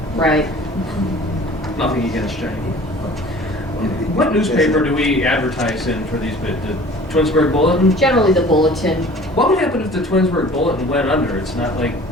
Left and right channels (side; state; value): both; normal; correlation 0.46